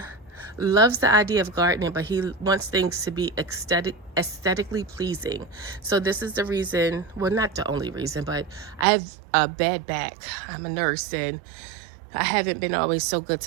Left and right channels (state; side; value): drops out; left; at 8.8 s